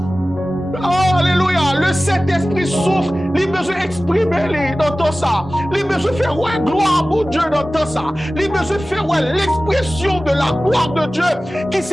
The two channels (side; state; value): both; normal; correlation 0.96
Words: Oh Alléluia! Le Saint-Esprit souffre. Il a besoin d'exprimer dans tout ça. Il a besoin de faire gloire pour Dieu dans tout ça. Il a besoin de faire l'expression de la gloire de Dieu, qui